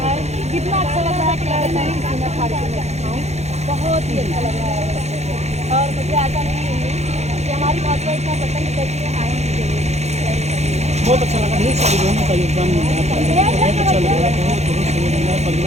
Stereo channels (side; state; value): left; late; 0.32 ms